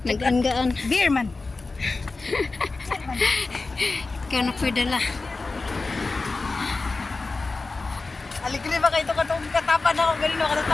Nag-anggaan. Beer man. Kaya na pwedala. Aligli ba kayo katong katapan ako galing no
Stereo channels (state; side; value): quieter; right; 3.7 dB